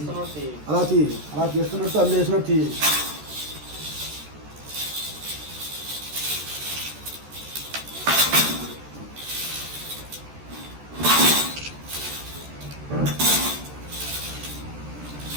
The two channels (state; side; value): late; left; 13 ms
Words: అలా చేస్తున్నట్టు అందులో వేసినట్టు